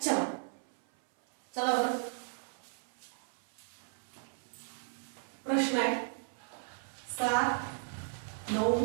चला चला बरं. प्रश्न आहे 7,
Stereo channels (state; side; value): silent; left; 54 dB below the other